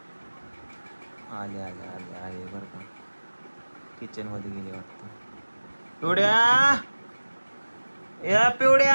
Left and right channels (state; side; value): inverted; both; correlation -1.00